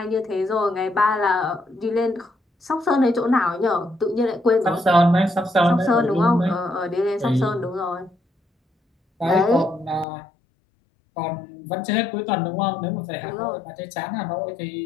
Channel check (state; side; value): drops out; right; at 10.1 s